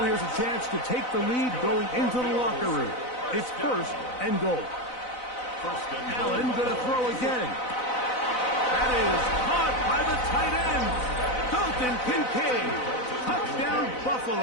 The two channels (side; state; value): right; late; 4.0 ms